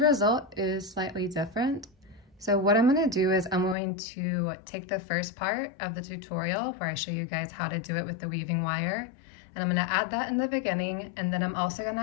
result is slightly different. So what I'm going to do is I'm going to take the first part of the tutorial where I show you guys how to do it with the weaving wire, and I'm going to add that in the beginning, and then I'm also going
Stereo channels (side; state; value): right; drops out; at 3.8 s